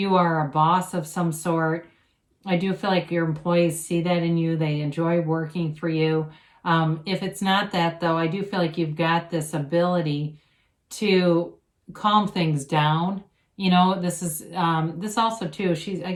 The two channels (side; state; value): both; identical; correlation 1.00